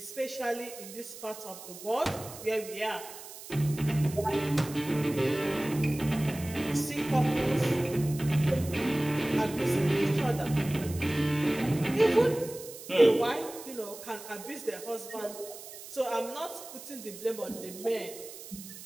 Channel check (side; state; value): right; noise; hiss, 14 dB below the sound